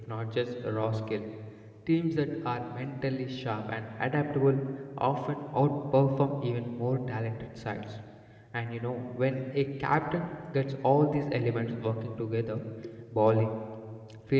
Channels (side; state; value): both; identical; correlation 1.00